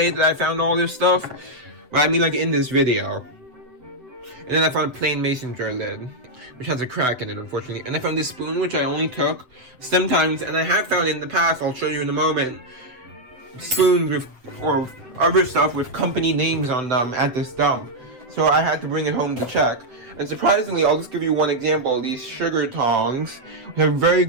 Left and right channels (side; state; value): left; late; 8.1 ms